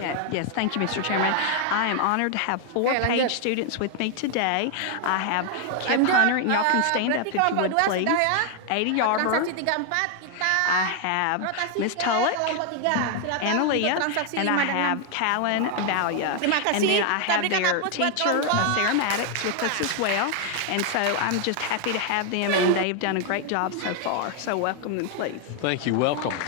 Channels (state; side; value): different; both; correlation 0.00